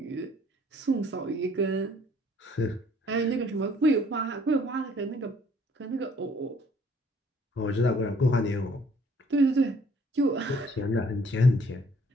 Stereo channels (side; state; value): both; normal; correlation 0.60